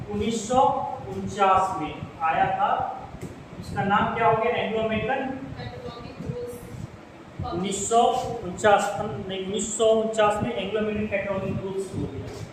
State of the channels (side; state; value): both; identical; correlation 1.00